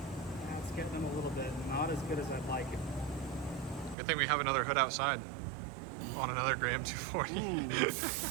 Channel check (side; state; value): left; drops out; at 4.0 s